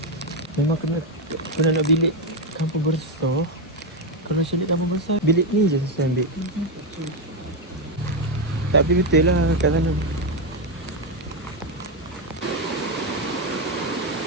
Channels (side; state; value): both; normal; correlation 0.06